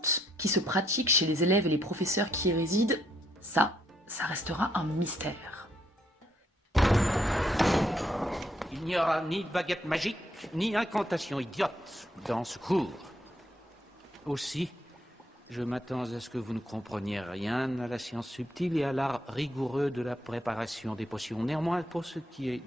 qui se pratique chez les élèves et les professeurs qui y résident? Ça restera un mystère. Il n'y aura ni baguette magique, ni incantation idiote dans ce cours. Aussi, Je m'attends à ce que vous ne compreniez rien à la science subtile et à l'art rigoureux de la préparation des potions. Néanmoins, pour ce qui est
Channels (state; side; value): normal; both; correlation 0.72